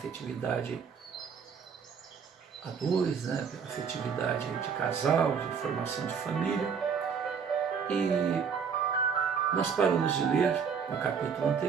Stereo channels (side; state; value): left; quieter; 6.5 dB